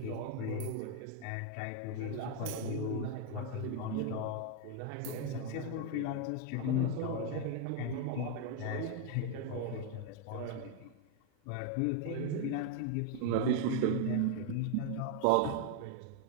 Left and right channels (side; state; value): both; different; correlation 0.01